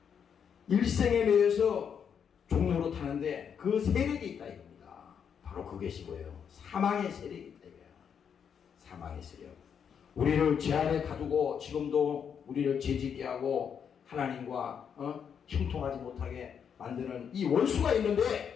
일생에 매여서 종로로 타는데 그 세력이 있다 이겁니다. 바로 그것이 뭐예요? 사망의 세력이 있다 이거예요. 사망의 세력. 우리를 죄 아래 가두고 지금도 우리를 죄짓게 하고 하나님과 형통하지 못하게 만드는 이 원수가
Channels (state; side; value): quieter; right; 7.5 dB